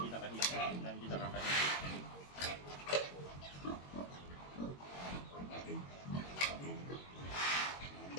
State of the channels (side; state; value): right; late; 22 ms